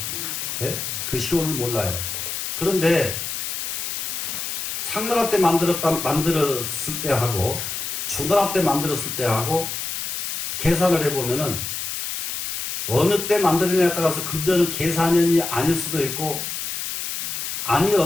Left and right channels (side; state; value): left; noise; hiss, 4 dB below the sound